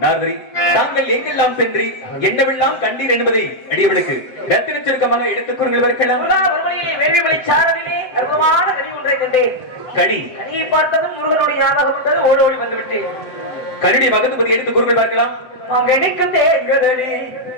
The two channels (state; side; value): late; right; 7.8 ms